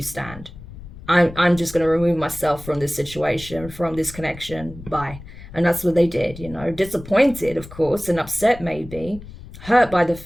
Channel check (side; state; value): left; noise; rumble, 16 dB below the sound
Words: stand. I'm just going to remove myself from this situation, from this connection. Bye. And that's what they did, you know, disappointed, of course, and upset maybe, hurt by the